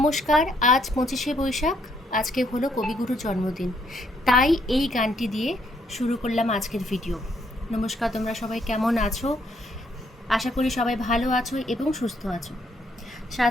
আজ 25শে বৈশাখ। আজকে হলো কবিগুরুর জন্মদিন, তাই এই গানটি দিয়ে শুরু করলাম আজকের ভিডিও। নমস্কার, তোমরা সবাই কেমন আছো? আশা করি সবাই ভালো আছো এবং সুস্থ আছো।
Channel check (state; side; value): normal; both; correlation 0.71